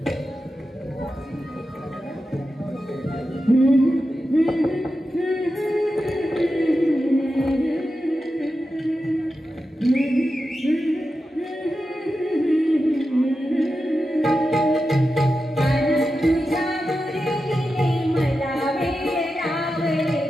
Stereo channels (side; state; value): both; normal; correlation 0.91